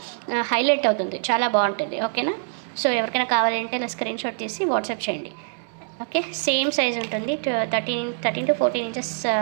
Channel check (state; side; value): silent; left; 62 dB below the other